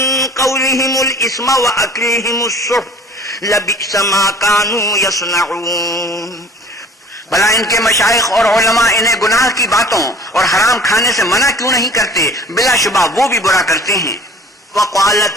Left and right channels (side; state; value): both; normal; correlation 0.48